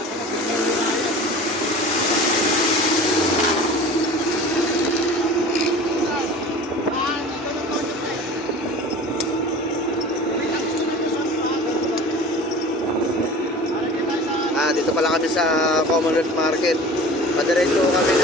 Dito pala kami sa Commonwealth Market. Padiretso kami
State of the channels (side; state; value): both; normal; correlation 0.40